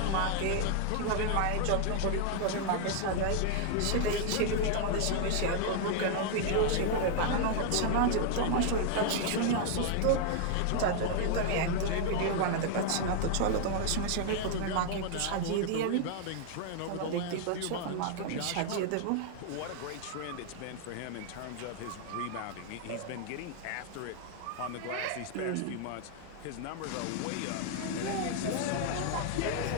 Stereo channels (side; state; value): both; different; correlation 0.00